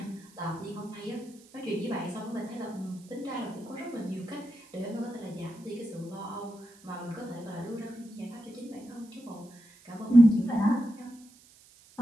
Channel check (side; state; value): right; noise; hiss, 25 dB below the sound